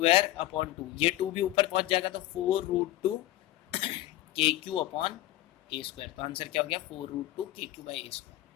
अपॉन 2, ये 2 भी ऊपर पहुँच जाएगा तो 4√2 KQ अपॉन ए स्क्वायर। तो आंसर क्या हो गया? 4√2 KQ बाय ए स्क्वायर,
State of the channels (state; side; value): quieter; right; 15.5 dB